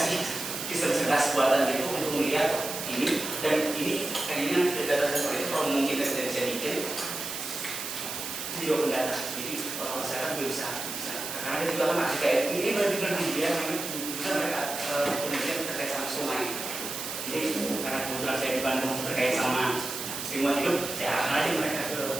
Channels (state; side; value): noise; right; hiss, 6 dB below the sound